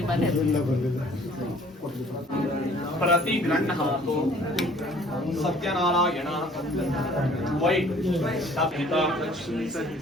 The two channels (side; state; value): both; normal; correlation 0.54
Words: ಮನೆ प्रति गृह्णातु सत्यनारायण वै